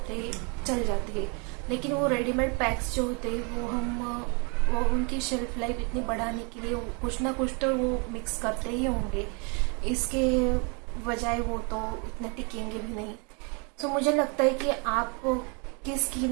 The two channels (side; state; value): left; quieter; 34.0 dB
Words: हैं, चल जाते हैं। लेकिन वो रेडीमेड पैक्स जो होते हैं वो उनकी शेल्फ लाइफ इतनी बढ़ाने के लिए कुछ ना कुछ तो वो मिक्स करते ही होंगे, इसके बजाय वो तो इतने टिकेंगे भी नहीं। तो मुझे लगता है कि आप की